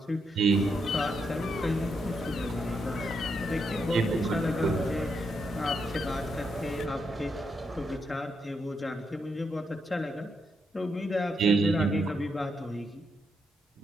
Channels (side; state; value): both; normal; correlation 0.80